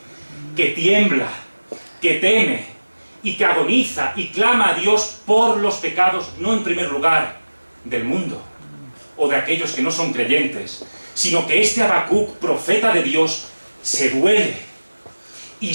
que tiembla, que teme y que agoniza y clama a Dios por los pecados, no en primer lugar del mundo o de aquellos que no son creyentes, sino que este Habacuc, profeta de Dios, se duele y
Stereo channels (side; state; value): both; inverted; correlation -1.00